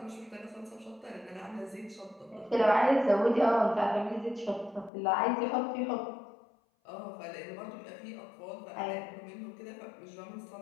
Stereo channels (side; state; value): right; drops out; at 4.9 s